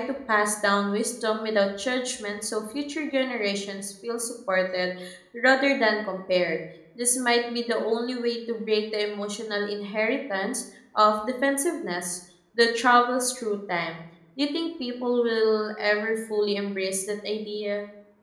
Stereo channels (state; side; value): identical; both; correlation 1.00